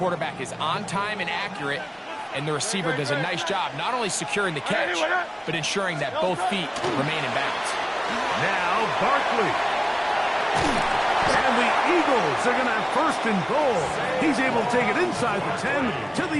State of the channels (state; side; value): identical; both; correlation 1.00